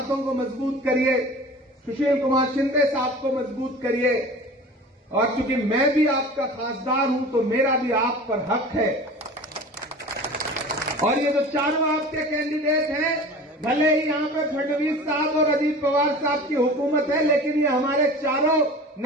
को मजबूत करिए, सुशील कुमार शिंदे साहब को मजबूत करिए। और चूंकि मैं भी आपका खासदार हूं तो मेरा भी आप पर हक है। और ये जो चारों आपके कैंडिडेट हैं, भले ही यहां पर फडणवीस साहब और अजीत पवार साहब की हुकूमत है, लेकिन ये हमारे चारों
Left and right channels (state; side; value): normal; both; correlation 0.38